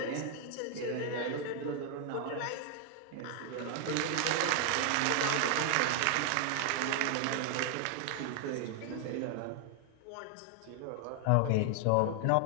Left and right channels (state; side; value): different; both; correlation 0.00